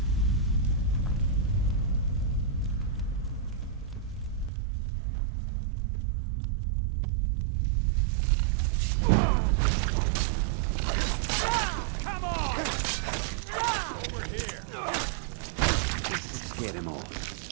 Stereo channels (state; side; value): drops out; left; at 4.5 s